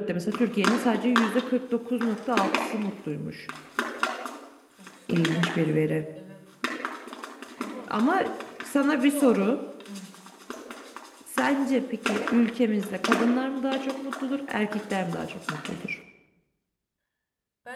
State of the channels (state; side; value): identical; both; correlation 1.00